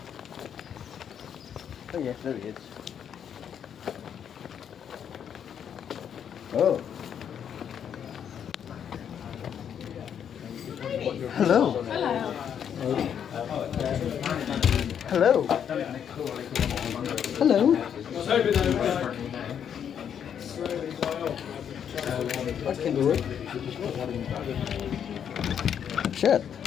Oh yes, there he is. Oh. Hello. Hello. Hello. Hello. That can do it. Shirt.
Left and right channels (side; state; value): right; quieter; 8.5 dB